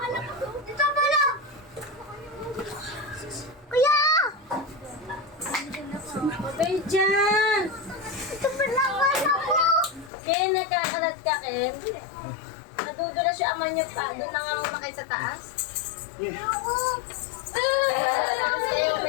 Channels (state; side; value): drops out; right; at 10.1 s